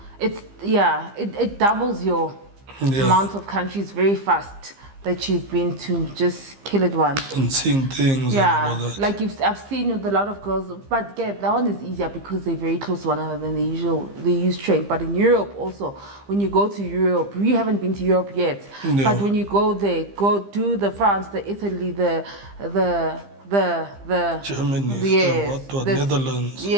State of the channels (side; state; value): left; late; 15 ms